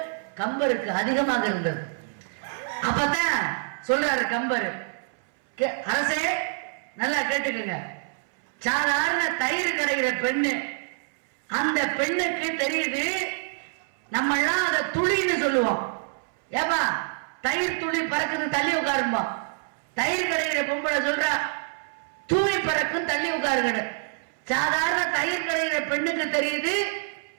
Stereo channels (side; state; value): left; silent; 61 dB below the other